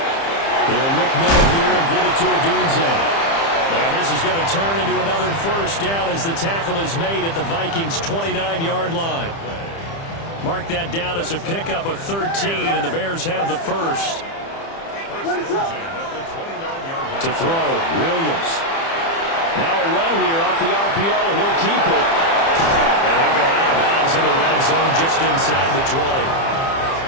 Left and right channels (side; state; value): right; late; 30 ms